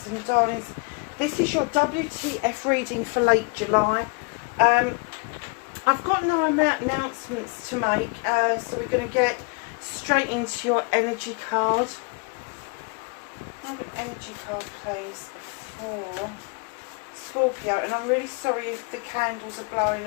and Darlings. This is your WTF reading for late July. I've got no announcements to make, so we're going to get straight into your energy card. I have an energy card, please, for Scorpio, and I'm really sorry if the candles are blowing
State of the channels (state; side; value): quieter; right; 30.9 dB